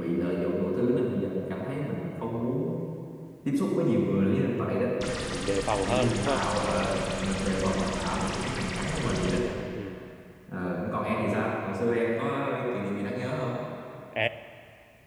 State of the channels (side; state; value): both; identical; correlation 1.00